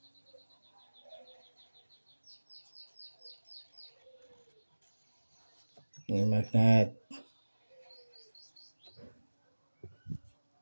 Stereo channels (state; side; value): inverted; both; correlation -1.00